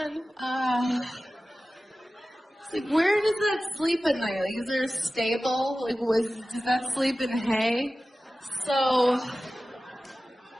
Like, where does that sleep at night? Like, is there a stable? Like, does that sleep in hay? So,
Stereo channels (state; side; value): normal; both; correlation 0.96